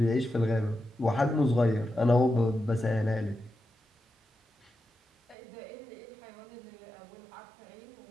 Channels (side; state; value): left; drops out; at 5.4 s